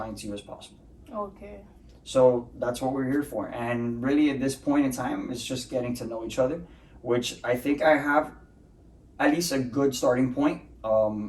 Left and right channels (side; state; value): both; identical; correlation 1.00